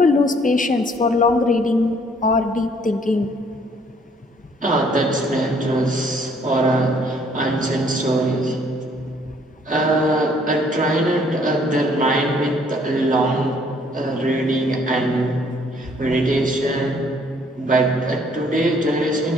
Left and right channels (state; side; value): normal; both; correlation 0.62